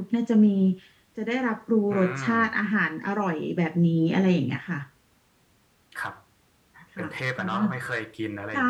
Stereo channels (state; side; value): identical; both; correlation 1.00